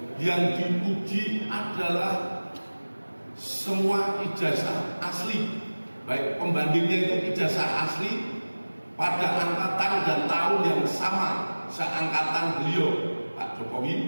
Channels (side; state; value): both; inverted; correlation -1.00